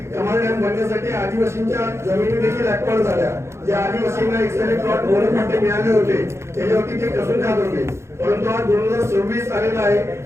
कमाल डॅम बनण्यासाठी आदिवासींच्या जमिनी देखील ऍक्वायर झाल्या. ज्या आदिवासींना एक्सरे प्लॉट मोठे मिळाले होते त्याच्यावरती ते कसून खात होते. परंतु आज 2026 आलेला आहे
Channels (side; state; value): left; late; 0.13 ms